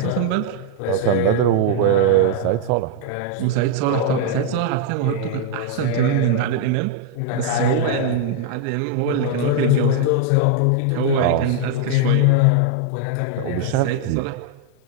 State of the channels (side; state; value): both; different; correlation 0.00